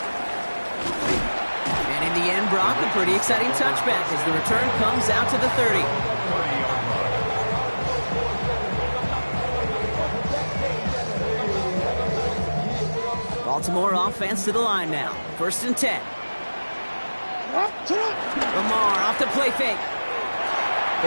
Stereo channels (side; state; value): both; inverted; correlation -1.00